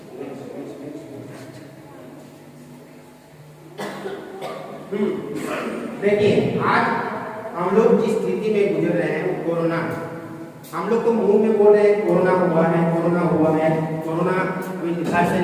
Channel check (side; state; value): both; identical; correlation 1.00